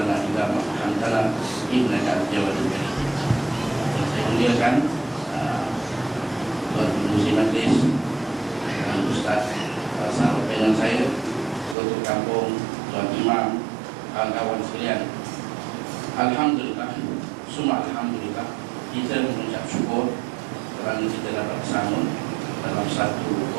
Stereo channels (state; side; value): drops out; left; at 11.8 s